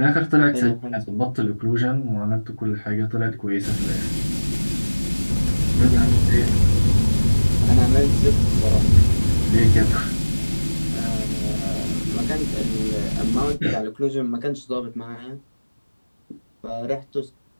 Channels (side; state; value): both; inverted; correlation -1.00